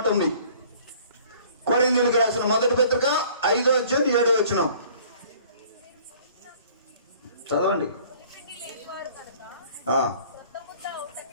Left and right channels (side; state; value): both; inverted; correlation -0.53